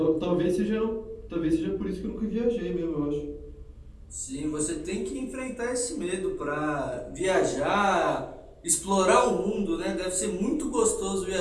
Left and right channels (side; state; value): both; identical; correlation 1.00